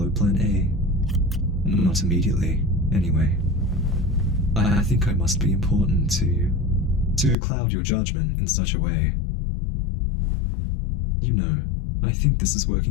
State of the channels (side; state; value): right; drops out; at 7.4 s